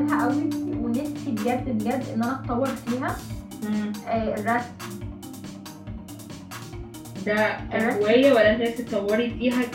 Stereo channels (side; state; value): both; identical; correlation 1.00